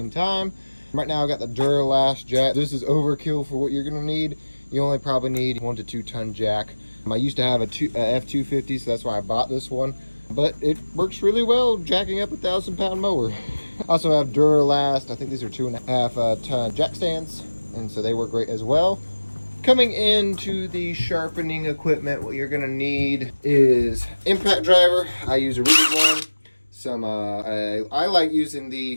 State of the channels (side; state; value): both; inverted; correlation -1.00